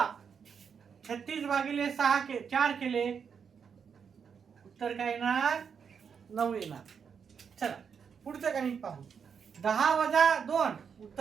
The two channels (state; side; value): quieter; left; 6.7 dB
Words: 36 भागिले 4 केले, उत्तर काय येणार? 9 येणार. चला पुढचं गणित पाहू. 10 वजा 2